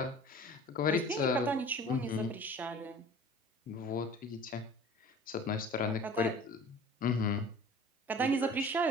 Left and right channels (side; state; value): both; normal; correlation 0.44